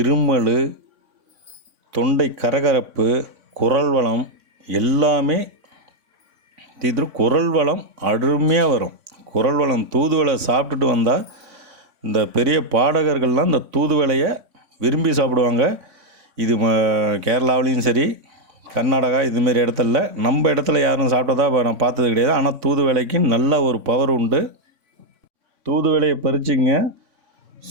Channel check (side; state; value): left; late; 3.6 ms